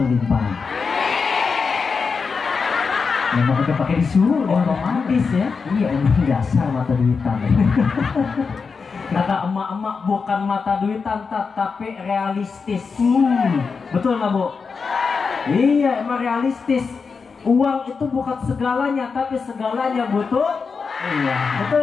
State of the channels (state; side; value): quieter; right; 5.1 dB